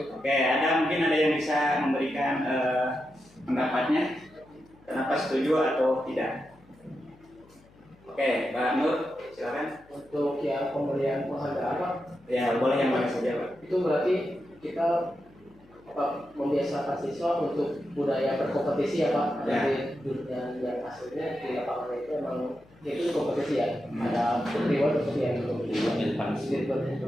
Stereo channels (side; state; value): left; noise; hum, 28 dB below the sound